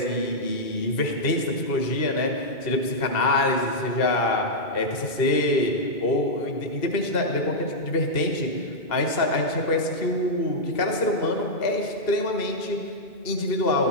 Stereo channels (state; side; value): late; right; 2.7 ms